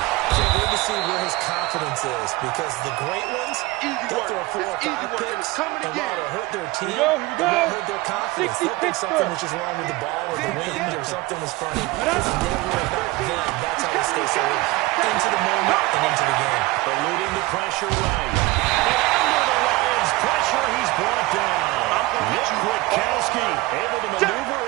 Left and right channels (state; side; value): quieter; left; 20.6 dB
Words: Can't wait to see where his confidence is because the great ones, they'll throw 4 or 5 picks, and while it'll hurt their team, it won't hurt their confidence. They'll think something was just wrong with the ball or the wind or something was funny. It's never about them. That's how you stay so into the moment and into the game. Eluding the pressure right. And under the Lions' pressure, he's brought down. Nick Kwiatkowski able to maneuver